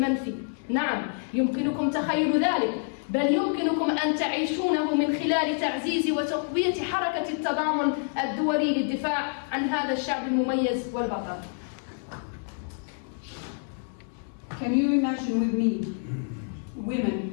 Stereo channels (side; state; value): right; silent; 60 dB below the other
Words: نعم، يمكنكم تخيل ذلك، بل يمكنكم أن تعيشونه من خلال تعزيز وتقوية حركة التضامن الدولي للدفاع عن هذا الشعب المميز والبطل. Can you imagine with me